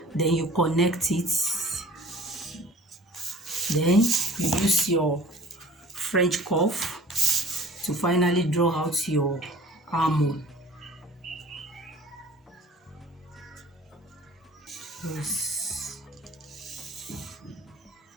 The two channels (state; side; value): normal; both; correlation 0.46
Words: Then you connect it. Then you use your French curve to finally draw out your armhole. Yes.